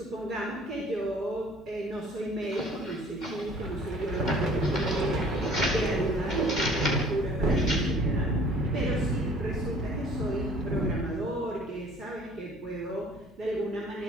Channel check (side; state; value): both; normal; correlation 0.52